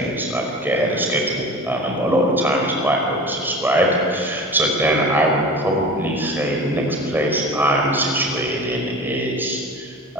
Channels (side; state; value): both; normal; correlation 0.35